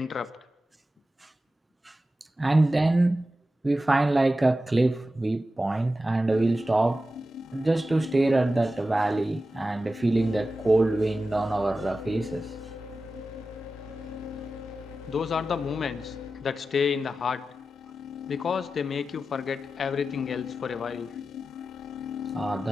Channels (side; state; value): both; normal; correlation 0.93